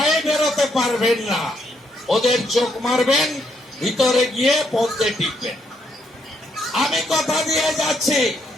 বেরোতে পারবেন না, ওদের চোখ মারবেন, ভিতরে গিয়ে পথে টিকবেন। আমি কথা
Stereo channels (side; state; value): both; normal; correlation 0.75